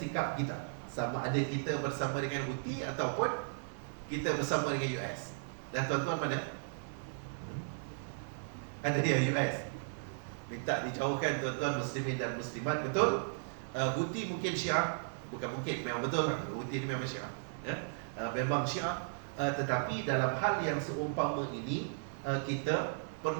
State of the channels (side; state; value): left; silent; 54 dB below the other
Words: kita, sama ada kita bersama dengan Houthi ataupun kita bersama dengan US. Dan tuan-tuan mana? Ada dia US minta dijauhkan tuan-tuan muslimin dan muslimat, betul? Houthi mungkin Syiah, bukan mungkin, memang betul. Houthi ni memang Syiah, memang Syiah, tetapi dalam hal yang seumpama ini, kita